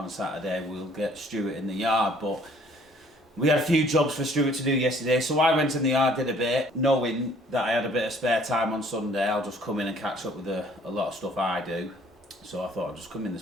a Saturday, we'll get Stuart in the yard, but we had a few jobs for Stuart to do yesterday, so I went in the yard, did a bit, knowing that I had a bit of spare time on Sunday. I'll just come in and catch up with a lot of stuff I do. So I thought I'd just come in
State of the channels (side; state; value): both; normal; correlation 0.58